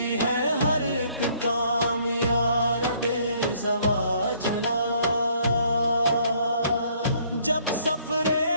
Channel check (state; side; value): inverted; both; correlation -0.63